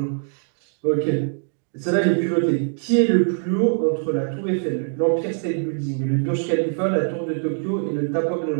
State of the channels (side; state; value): left; silent; digital silence